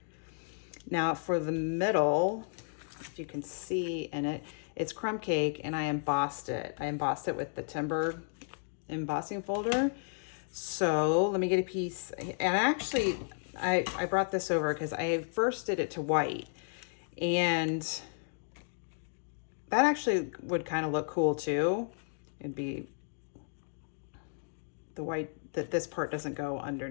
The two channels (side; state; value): right; silent; digital silence